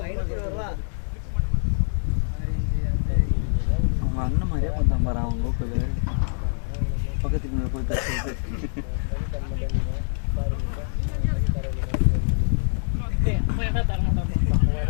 அவங்க அண்ணன் மாதிரியே பண்ணாம பாரு அவங்க லோக்கல் பக்கத்துக்கு போய் பேசுறது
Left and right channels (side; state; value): right; silent; 62 dB below the other